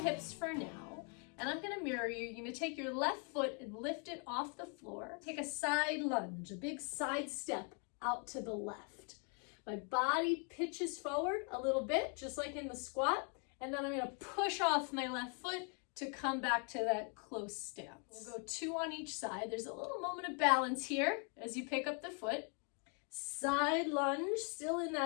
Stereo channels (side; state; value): right; quieter; 38.8 dB